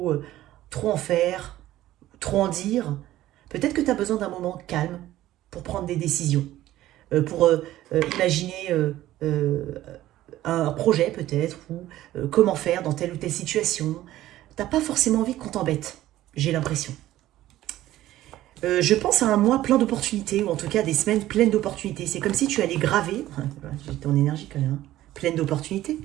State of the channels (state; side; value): quieter; left; 14.6 dB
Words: en faire, trop en dire. Peut-être que tu as besoin d'un moment calme pour prendre des décisions, pour imaginer un projet peut-être, ou comment faire dans telle ou telle situation. T'as pas forcément envie qu'on t'embête, j'ai l'impression. Je pense à un mois plein d'opportunités, ou en tout cas des semaines pleines d'opportunités. C'est comme si tu allais graver, j'ai ton énergie quand même, pleine d'opportunités,